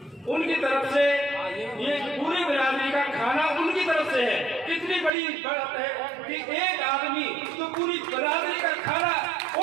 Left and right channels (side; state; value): left; drops out; at 5.1 s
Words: उनकी तरफ से ये पूरी बिरादरी का खाना उनकी तरफ से है। कितनी बड़ी बात है कि एक आदमी तो पूरी बिरादरी का खाना